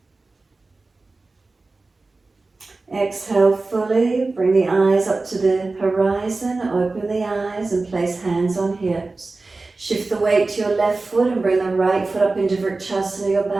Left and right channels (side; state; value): left; quieter; 3.5 dB